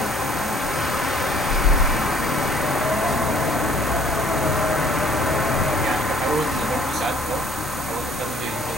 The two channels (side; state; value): both; normal; correlation 0.56